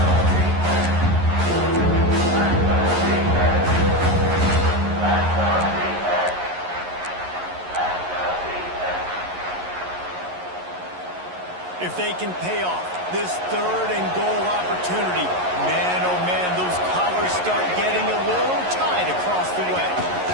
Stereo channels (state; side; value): late; left; 11 ms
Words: If they can pay off this 3rd and goal opportunity, man, oh man, those collars start getting a little tight across the way.